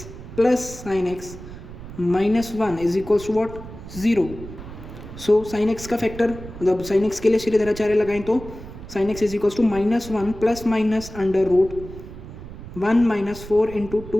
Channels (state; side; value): noise; right; rumble, 13 dB below the sound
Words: plus sine x minus 1 is equals to what 0। So sine x का factor, मतलब sine x के लिए श्रीधराचार्य लगाएं तो sine x is equals to -1 plus minus under root 1 minus 4 into